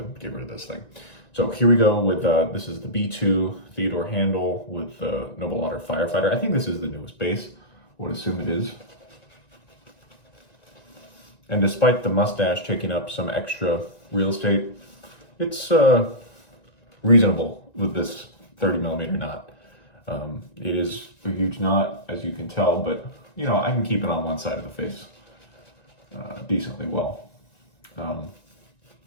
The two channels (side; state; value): right; late; 1.9 ms